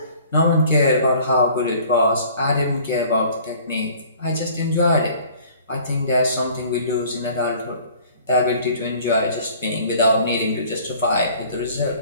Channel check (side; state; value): both; inverted; correlation -0.51